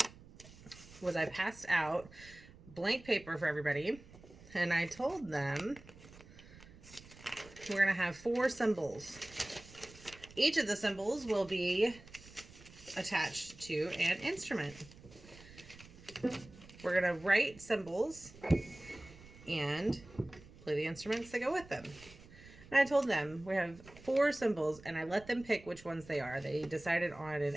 was I passed out blank paper for everybody, and I told them we're going to have 4 symbols. Each of the symbols will be attached to an instrument. We're going to write symbols and play the instruments that go with them. And I told them we have 4 symbols, and I let them pick which ones they are. They decided on an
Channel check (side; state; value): right; noise; rumble, 20 dB below the sound